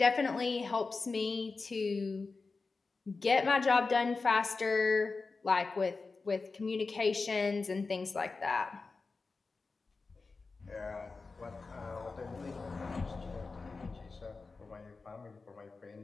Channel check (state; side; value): quieter; right; 4.1 dB